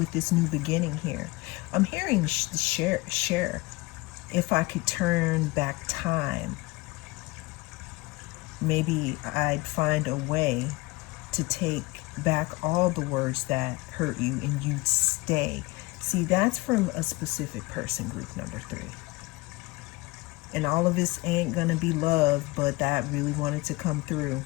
this new beginning here. I'm hearing share. If I could turn back time, maybe I'd find a way to take back all the words that hurt you and you'd stay. See, that's from a specific person, group number 3. And all of this ain't gonna be love, but that really wanted to come through.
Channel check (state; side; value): quieter; right; 22.5 dB